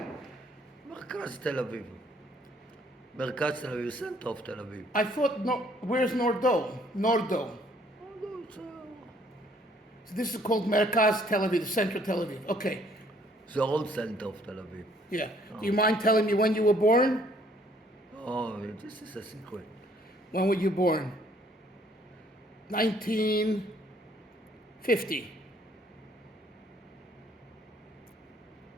מרכז תל אביב. מרכז תל אביב, center of תל אביב. I thought, no, where's Nordo? Nordo. So this is called Merkaz Tel Aviv, the center of Tel Aviv. Okay. The old center of Tel Aviv. Yeah. Do you mind telling me when you were born? Oh, this is a secret. When were you born? 1950.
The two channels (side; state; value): both; normal; correlation 0.63